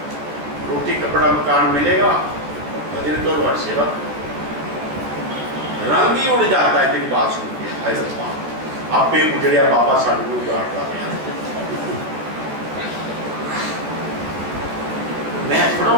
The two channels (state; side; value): late; left; 14 ms